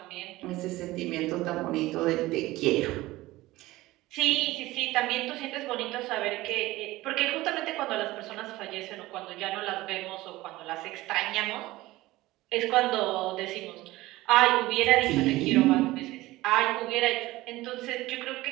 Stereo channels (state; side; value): quieter; left; 18.3 dB